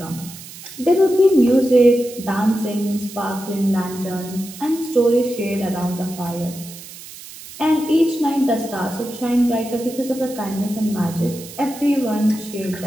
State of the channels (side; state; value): right; noise; hiss, 15 dB below the sound